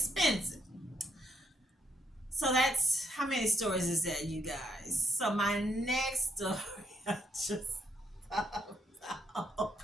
So that's how many stories is that, you guys? So my next story, I just oh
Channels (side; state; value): both; normal; correlation 0.74